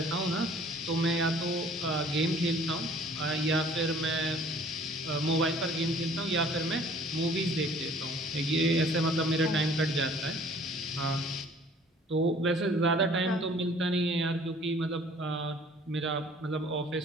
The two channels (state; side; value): normal; both; correlation 0.53